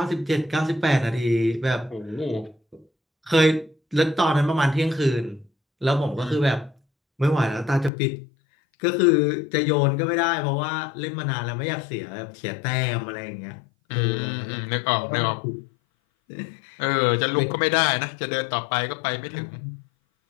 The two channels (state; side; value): drops out; right; at 7.9 s